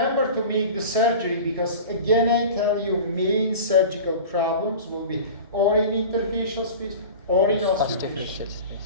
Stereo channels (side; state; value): both; inverted; correlation -0.35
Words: to make the surgery, because again I tell you, main surgical problems will be or in interfacial space or in osteofacial